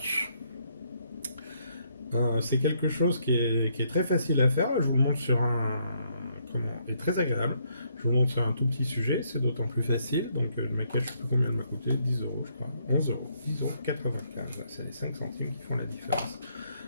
C'est quelque chose qui est très facile à faire. Je vous le montre sur et très agréable. Je vous montre sur un tout petit sujet, c'est d'autant plus facile. Donc le maquillage, je ne sais pas combien il m'a coûté, 10 euros je crois, 11 euros, 10 euros 95. C'est les 5 centimes qui font la différence.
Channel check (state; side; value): inverted; both; correlation -0.71